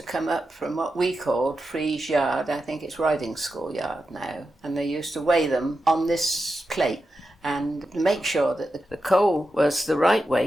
come up from what we called Freeze Yard. I think it's Riding School Yard now, and they used to weigh them on this plate and make sure that the coal was the right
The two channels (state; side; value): normal; both; correlation 0.90